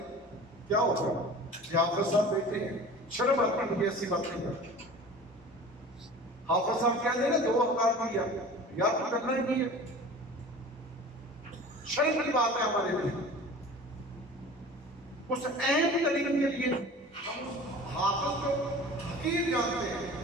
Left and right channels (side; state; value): both; normal; correlation 0.40